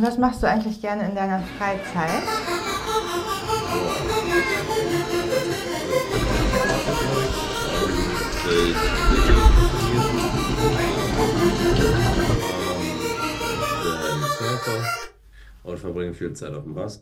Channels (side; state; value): both; identical; correlation 1.00